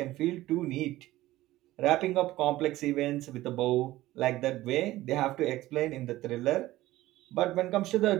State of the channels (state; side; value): quieter; left; 16.5 dB